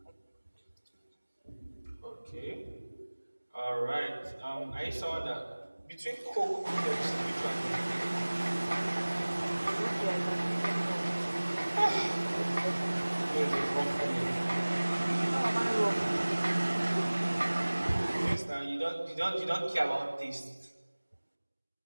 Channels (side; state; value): both; inverted; correlation -1.00